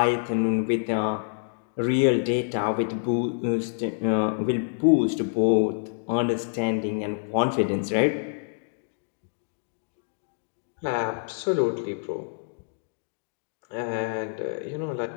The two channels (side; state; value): right; silent; digital silence